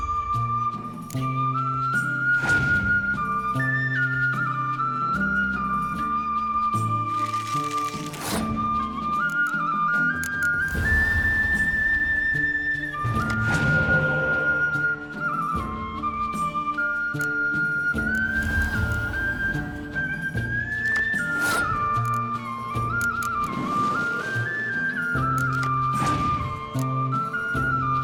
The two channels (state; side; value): identical; both; correlation 1.00